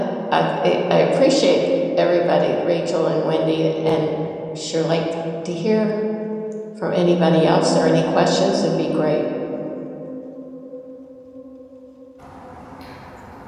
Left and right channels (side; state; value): both; identical; correlation 1.00